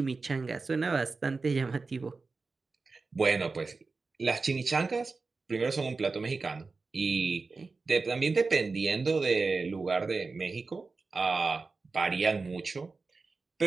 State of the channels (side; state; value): left; quieter; 4.1 dB